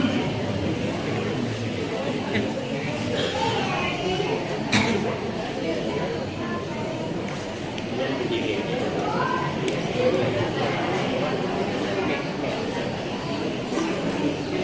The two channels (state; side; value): identical; both; correlation 1.00